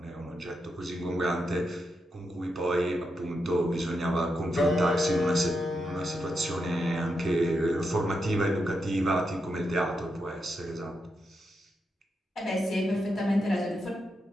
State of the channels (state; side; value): normal; both; correlation 0.84